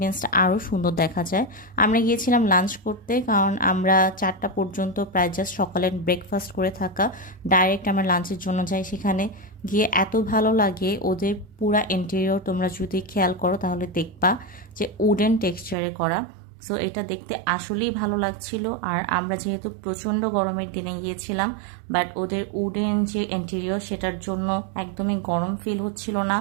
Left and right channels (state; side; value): drops out; left; at 15.8 s